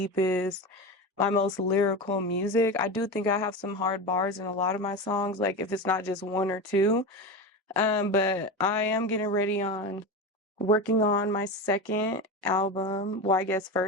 my most lyrical music. I do think I have some hard bars in a lot of my songs, like if it's not just one or two. But I am getting ready on working on my second album. Well, I guess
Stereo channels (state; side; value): normal; both; correlation 0.23